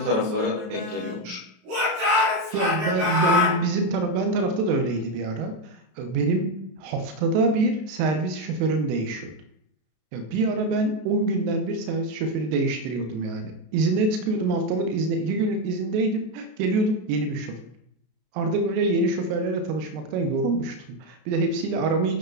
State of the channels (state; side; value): late; left; 33 ms